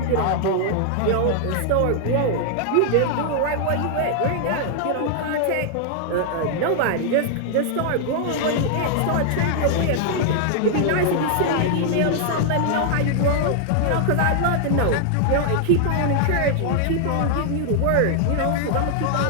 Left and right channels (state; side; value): different; both; correlation 0.00